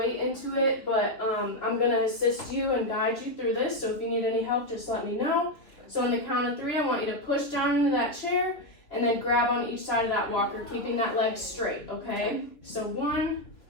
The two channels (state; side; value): late; right; 2.8 ms